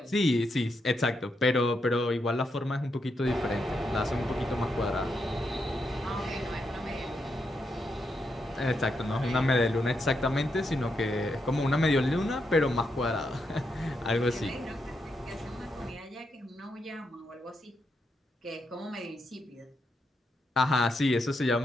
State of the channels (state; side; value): normal; both; correlation 0.82